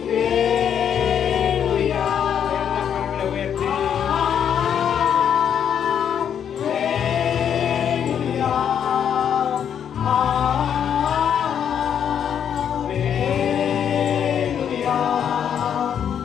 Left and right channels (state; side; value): quieter; right; 8.6 dB